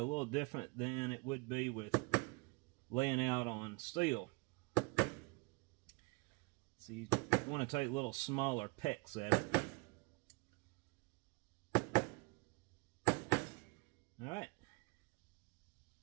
little different than it would be with laying out on steel. So you want to take little smaller pecks at it. Alright.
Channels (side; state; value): left; quieter; 29.4 dB